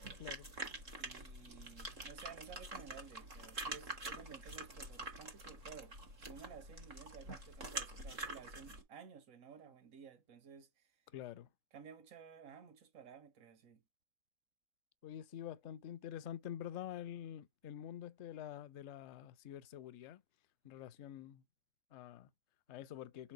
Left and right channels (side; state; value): left; late; 3.7 ms